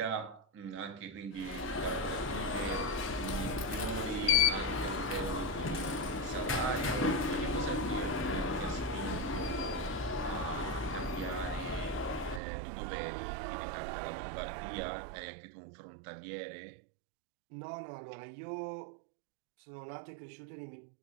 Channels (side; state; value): left; drops out; at 12.4 s